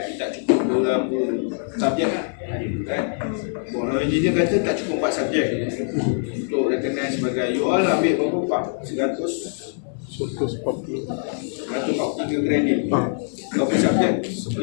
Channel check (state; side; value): silent; right; 63 dB below the other